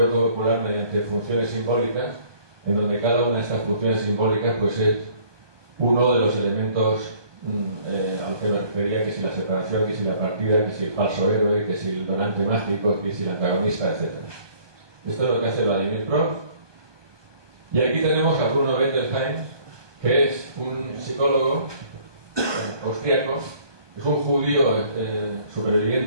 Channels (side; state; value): left; late; 1.2 ms